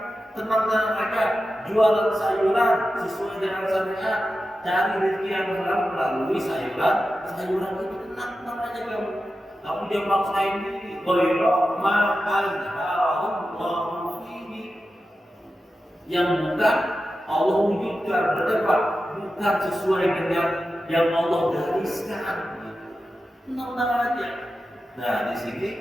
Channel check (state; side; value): normal; both; correlation 0.92